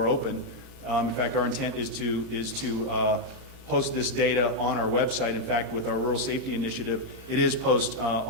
open. In fact, our intent is to post this data on our website. In fact, with our rural safety initiative, it is posted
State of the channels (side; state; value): left; late; 30 ms